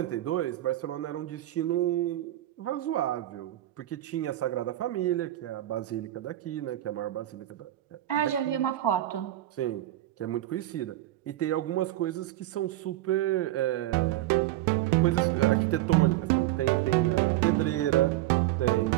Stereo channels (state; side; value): quieter; left; 15.0 dB